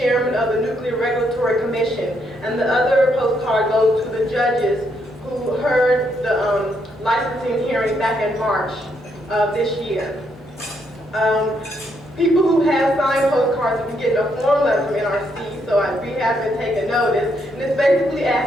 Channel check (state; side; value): normal; both; correlation 0.75